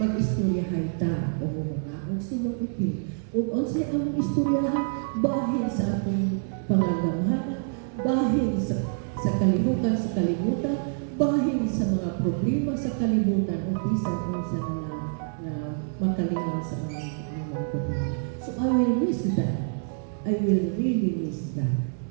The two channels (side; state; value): left; silent; digital silence